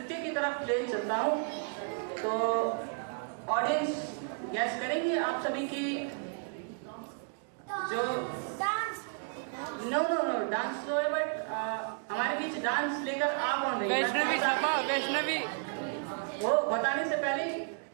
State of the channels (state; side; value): silent; left; 56 dB below the other